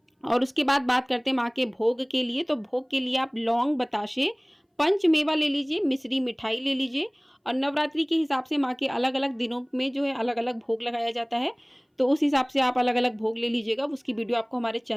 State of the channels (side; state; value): both; identical; correlation 1.00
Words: और उसके बाद बात करते हैं माँ के भोग के लिए। तो भोग के लिए आप लौंग, बताशे, पंचमेवा ले लीजिए, मिश्री मिठाई ले लीजिए। और नवरात्रि के हिसाब से माँ के अलग अलग दिनों में जो है अलग अलग भोग लगाया जाता है, तो उस हिसाब से आप अलग अलग भोग ले लीजिएगा। उसकी वीडियो आपको हमारे